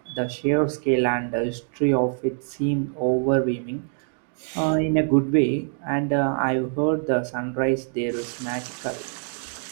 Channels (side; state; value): left; silent; digital silence